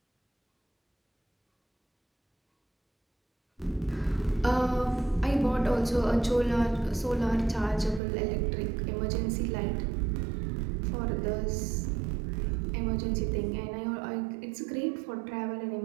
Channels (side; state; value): left; drops out; at 8.0 s